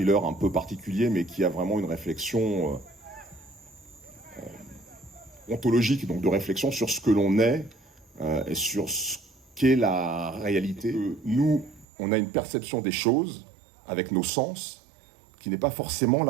un peu particulier, mais qui a vraiment une réflexion ontologique, donc de réflexion sur ce que l'on est et sur ce qu'est la réalité. Nous, on a une perception des choses avec nos sens qui n'est pas forcément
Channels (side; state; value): left; drops out; at 11.9 s